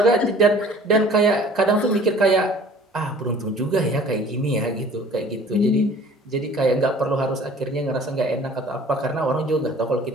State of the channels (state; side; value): normal; both; correlation 0.50